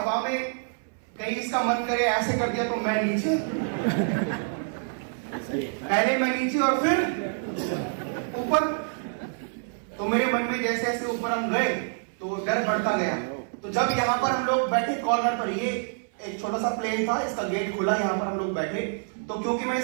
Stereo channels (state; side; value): silent; left; 60 dB below the other